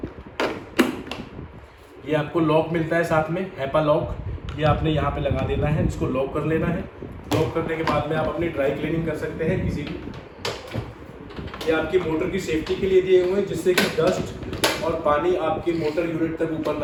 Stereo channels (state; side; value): identical; both; correlation 1.00